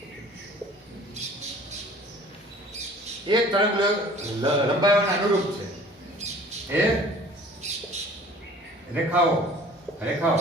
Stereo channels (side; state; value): both; normal; correlation 0.48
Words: एक तरंग लंबाई अनुरूप है. ए रेखाओं